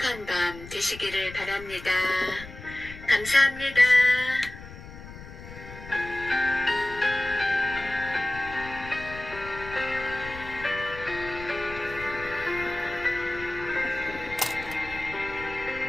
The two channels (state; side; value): noise; left; rumble, 14 dB below the sound